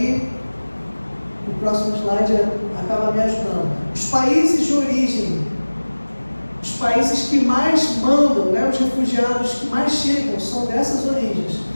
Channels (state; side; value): inverted; both; correlation -1.00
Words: o próximo slide acaba me ajudando. Os países de origem, os países que mais mandam, os refugiados que mais chegam são dessas origens,